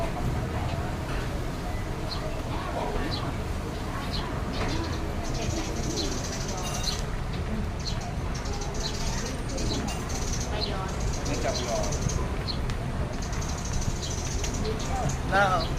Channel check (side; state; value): both; identical; correlation 1.00